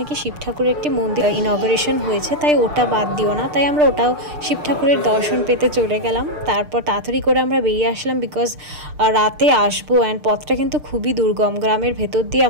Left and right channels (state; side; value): late; left; 6.7 ms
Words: শিব ঠাকুরের একটি মন্দির ইনগরেশন হয়েছে, তাই ওটা বাদ দিও না, তাই আমরা ওটাও শিব ঠাকুরের দর্শন পেতে চলে গেলাম। তারপর তাড়াতাড়ি করে আমরা বেরিয়ে আসলাম, বিকজ রাতে আসবো, অ্যান্ড পথটা কিন্তু খুবই দুর্গম, গ্রামের ভেতর দিয়ে